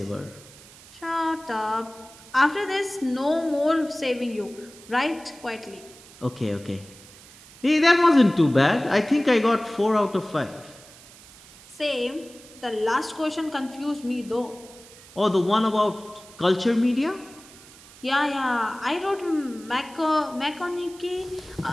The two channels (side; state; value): right; noise; hiss, 21 dB below the sound